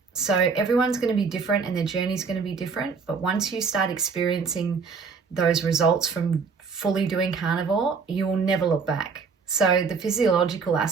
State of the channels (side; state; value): left; quieter; 5.2 dB